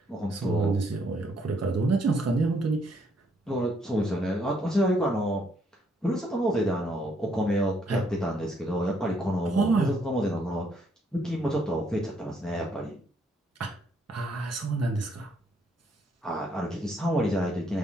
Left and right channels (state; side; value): normal; both; correlation 0.70